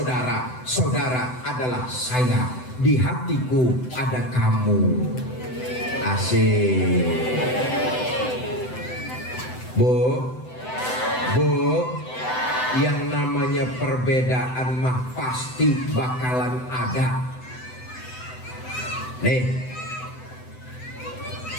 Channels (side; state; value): right; late; 7.9 ms